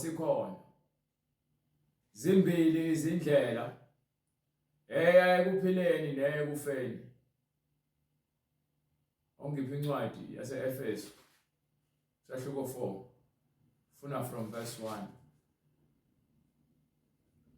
zimbili izindlela eya ekuphileni neyekufeni. Ongiphi incwadi yase-Efeso sahluko 4 funa from verse 1.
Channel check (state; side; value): identical; both; correlation 1.00